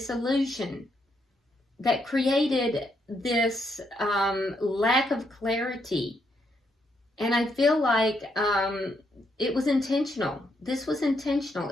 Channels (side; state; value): both; normal; correlation 0.77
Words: illusion, that created this lack of clarity. And I feel like it was intentional. This was